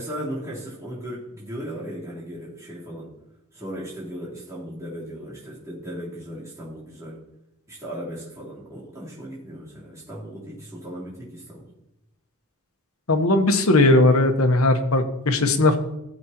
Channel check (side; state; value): both; normal; correlation 0.33